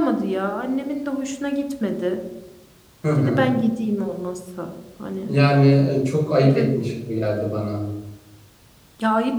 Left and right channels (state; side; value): identical; both; correlation 1.00